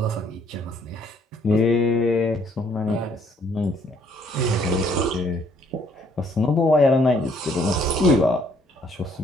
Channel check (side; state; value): both; normal; correlation 0.65